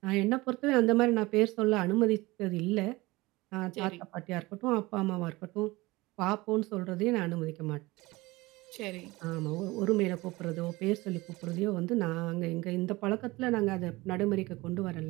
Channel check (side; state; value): left; quieter; 21.2 dB